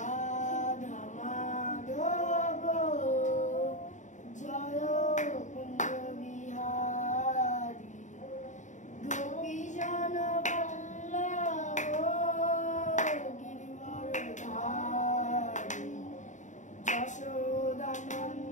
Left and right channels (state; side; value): late; right; 0.36 ms